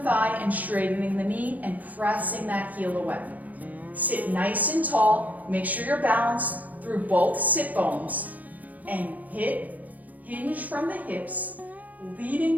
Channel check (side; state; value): left; late; 0.079 ms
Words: and straightening the knee and pressing that heel away. Sit nice and tall. Make sure you're balanced through both sit bones and hinge from the hips,